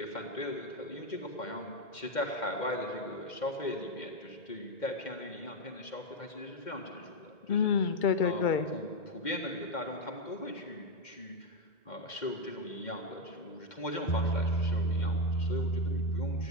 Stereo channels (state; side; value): late; right; 2.1 ms